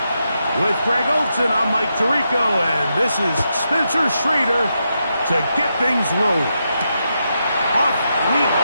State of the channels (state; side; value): inverted; both; correlation -0.84